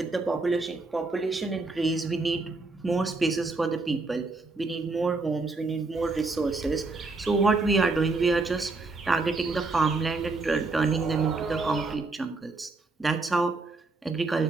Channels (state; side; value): quieter; left; 3.6 dB